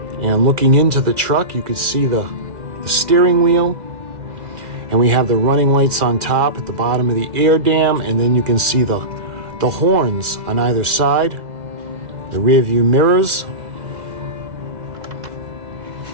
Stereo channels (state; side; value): late; left; 2.0 ms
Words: And looking into the truck, you can see the steering wheel. And we have the running lights on top at the bottom of the air dam. And then you can see the horns on either side. The rear view mirrors.